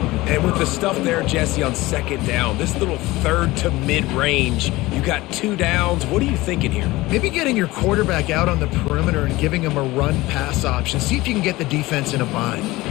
And with the stuff there, Jesse, on 2nd down, this little 3rd to mid-range, you got 2 downs. What are you thinking here? Maybe getting your quarterback out on the perimeter and giving him a run-pass option. See if you can get the defense in a bind.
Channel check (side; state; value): right; quieter; 19.5 dB